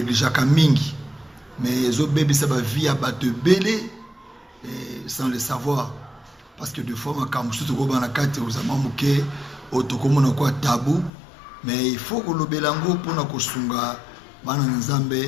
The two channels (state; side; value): drops out; right; at 11.1 s